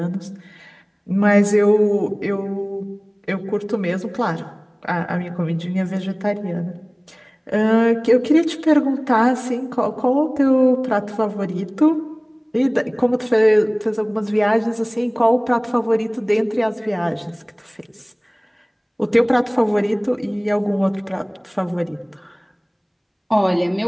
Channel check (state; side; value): identical; both; correlation 1.00